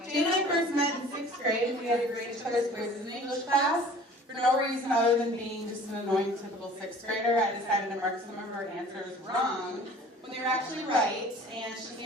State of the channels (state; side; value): normal; both; correlation 0.47